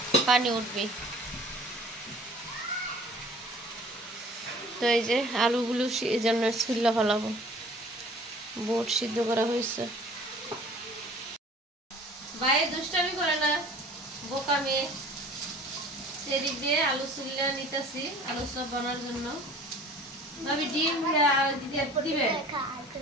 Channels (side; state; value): both; normal; correlation 0.48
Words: পানি উঠবে। তো এই যে আলুগুলো এই জন্য ছুল্লা ফেলাবো, বুট সিদ্ধ করা হয়েছে। বাইরে দুষ্টামি করে না, বোকা মেয়ে। সেদিক দিয়ে আলু ছুল্লা নিতেছি আলু চপ বানার জন্য। ভাবি ডিম দিবে,